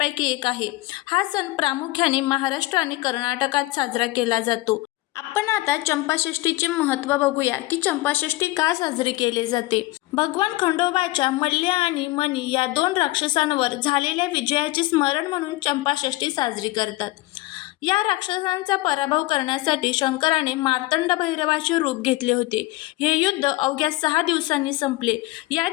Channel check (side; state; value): right; quieter; 19.5 dB